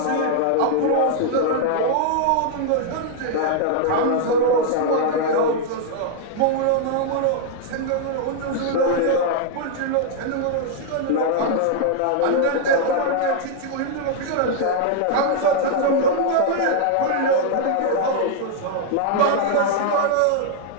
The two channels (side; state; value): both; different; correlation -0.01